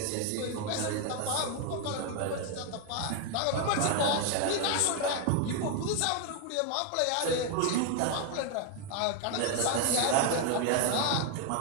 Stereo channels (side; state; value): both; different; correlation 0.01